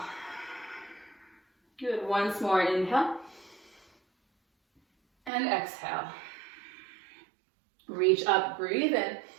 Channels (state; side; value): drops out; left; at 5.3 s